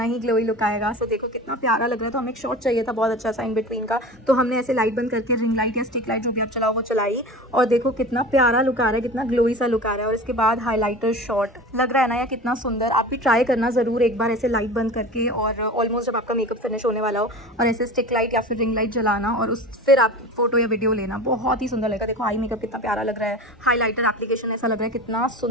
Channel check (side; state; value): both; normal; correlation 0.34